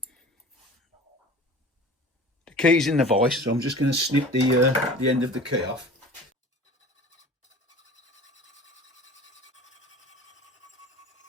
The key's in the vise, so I'm just going to snip the end of the key off.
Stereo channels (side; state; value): both; normal; correlation 0.40